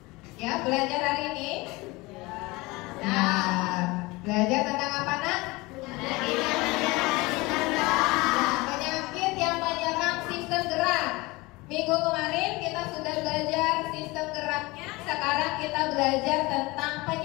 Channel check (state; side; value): quieter; right; 22.8 dB